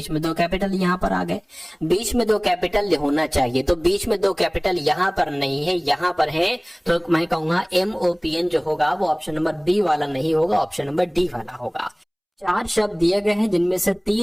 में दो कैपिटल, यहाँ पर आ गए। बीच में दो कैपिटल होना चाहिए, तो बीच में दो कैपिटल यहाँ पर नहीं है, यहाँ पर है। तो मैं कहूंगा MOPN जो होगा वो ऑप्शन नंबर बी वाला नहीं होगा, ऑप्शन नंबर डी वाला होगा। 4 शब्द दिए गए हैं, जिनमें से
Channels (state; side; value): identical; both; correlation 1.00